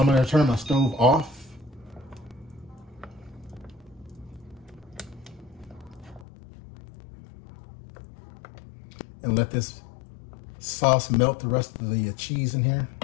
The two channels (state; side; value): drops out; right; at 6.2 s